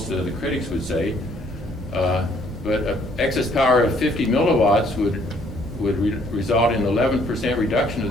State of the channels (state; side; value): normal; both; correlation 0.64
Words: of the critics would say. But excess power of 50 milliwatts would result in 11% reduction